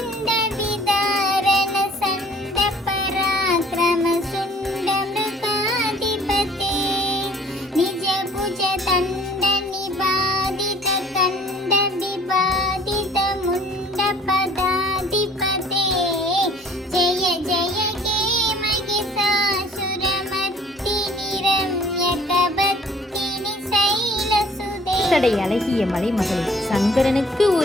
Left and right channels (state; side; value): normal; both; correlation 0.54